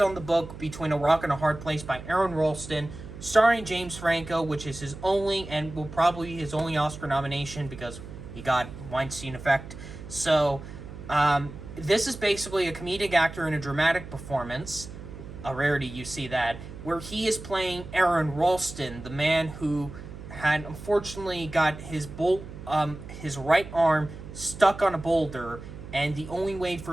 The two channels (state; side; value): noise; right; hum, 13 dB below the sound